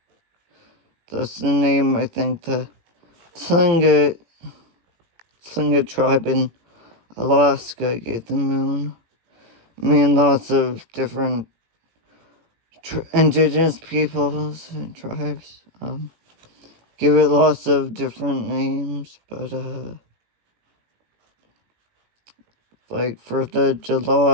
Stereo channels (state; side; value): late; left; 18 ms